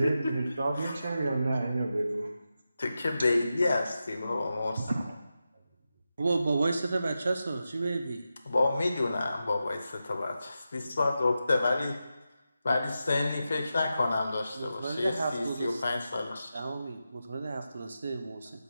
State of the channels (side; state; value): both; inverted; correlation -0.90